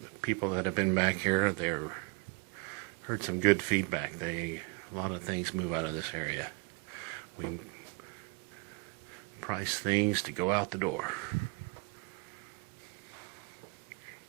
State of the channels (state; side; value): quieter; left; 29.6 dB